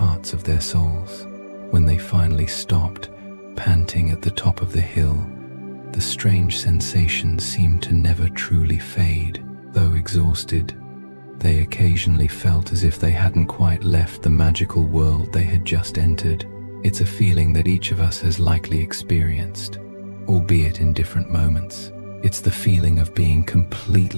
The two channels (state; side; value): inverted; both; correlation -1.00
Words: of their souls. When they finally stopped, panting at the top of the hill, the strange sensations seemed to never truly fade. Though exhausted, they occasionally felt as if they hadn't quite left the magical world they had just entered. It's a feeling that each of us has likely experienced, albeit in different moments. It's the feeling of being